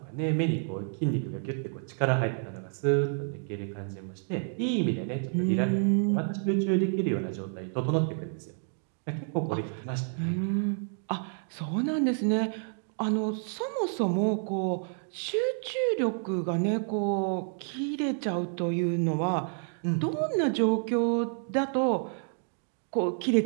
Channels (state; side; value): silent; left; 57 dB below the other